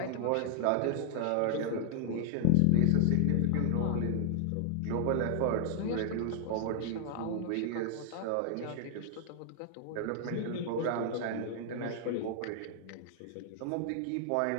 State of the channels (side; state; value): both; different; correlation 0.00